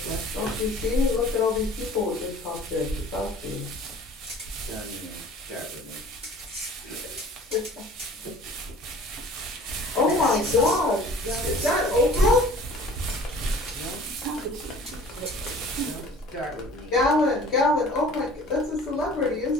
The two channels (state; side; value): normal; both; correlation 0.47